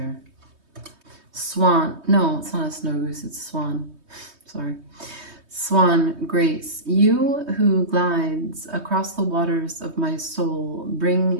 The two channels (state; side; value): late; left; 3.2 ms